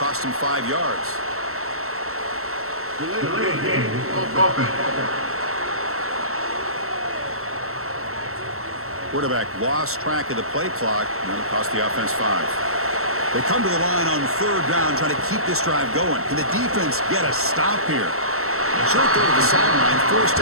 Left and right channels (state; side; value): late; left; 0.63 ms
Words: him 5 yards. Delay game. Offense. Quarterback lost track of the play clock, and that'll cost the offense 5. They come to the line on third down, trying to keep this drive going. Can the defense get a stop here? Short throw to the sideline, forced